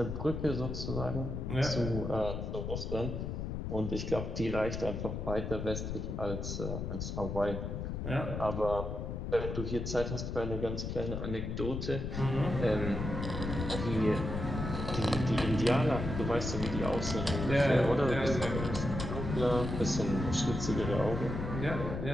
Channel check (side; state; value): left; noise; rumble, 4 dB below the sound